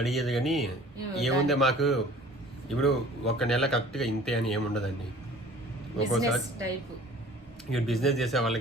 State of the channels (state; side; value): normal; both; correlation 0.48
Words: కానీ ఏముంది మాకు ఇప్పుడు ఒక నెల కరెక్ట్గా ఇంతే అని ఏముండదండి. ఒక్కోసారి ఇప్పుడు బిజినెస్ చేసే